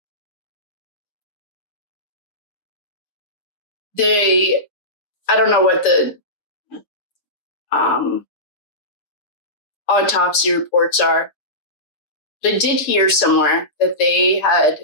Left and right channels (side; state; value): right; late; 6.7 ms